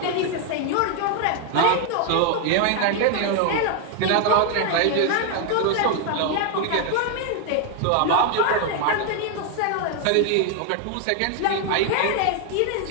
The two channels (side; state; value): both; different; correlation 0.00